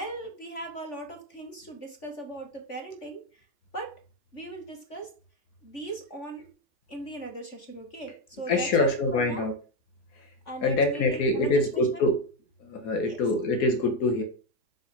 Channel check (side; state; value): right; late; 3.5 ms